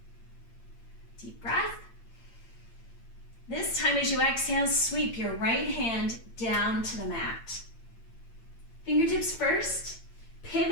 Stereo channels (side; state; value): right; late; 8.8 ms